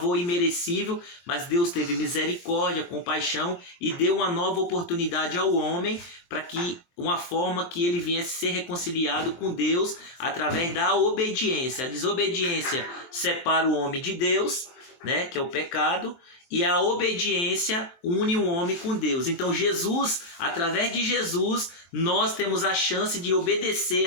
imerecível, mas Deus teve misericórdia, compaixão e deu uma nova oportunidade ao homem para que uma forma que ele viesse ser reconciliado com Deus através da obediência. A desobediência separa o homem de Deus, né, que é o pecado, e a obediência une o homem com Deus. Então Jesus, através de Jesus, nós temos a chance de obedecer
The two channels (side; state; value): right; late; 23 ms